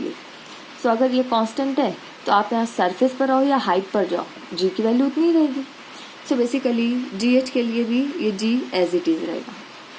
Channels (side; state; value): both; identical; correlation 1.00